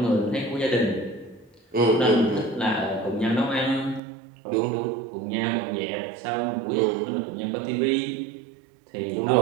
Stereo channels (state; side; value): drops out; left; at 4.0 s